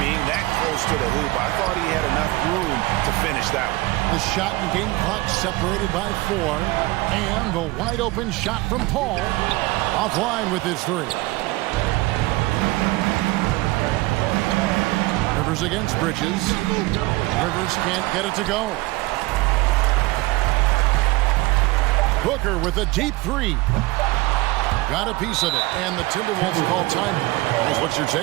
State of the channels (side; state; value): left; quieter; 21.1 dB